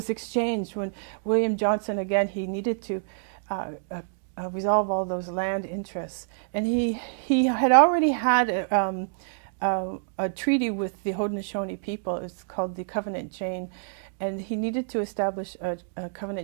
exchanged when William Johnson, again, he needed to resolve all those land interests. And he had already had a treaty with the Haudenosaunee people. It's called the Covenant Chain. And he needed to establish a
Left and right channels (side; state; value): left; silent; digital silence